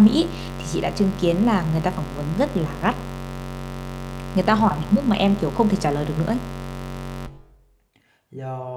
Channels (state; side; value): identical; both; correlation 1.00